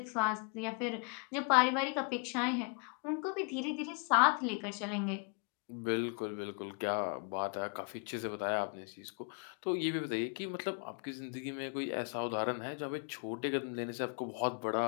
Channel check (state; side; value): quieter; right; 36.9 dB